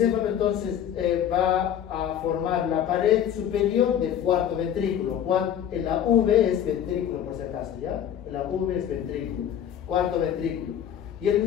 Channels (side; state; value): right; quieter; 9.8 dB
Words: entonces va a formar la pared superior del cuarto ventrículo. La V es ventrículo, por si acaso, ¿ya? La V es ventrículo, cuarto ventrículo. Y el